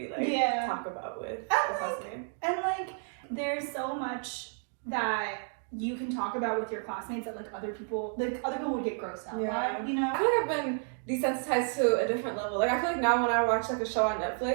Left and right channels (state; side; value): silent; left; 57 dB below the other